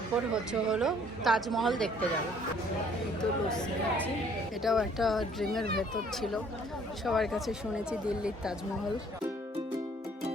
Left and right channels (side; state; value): both; normal; correlation 0.59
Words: হলো তাজমহল দেখতে যাব। এই তো লস্যি খাচ্ছি। এটাও একটা ড্রিমের ভেতর ছিল, সবার কাছে শুনেছি দিল্লির Taj Mahal.